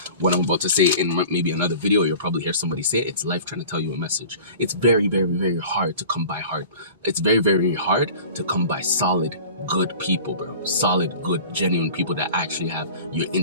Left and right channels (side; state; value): both; inverted; correlation -0.41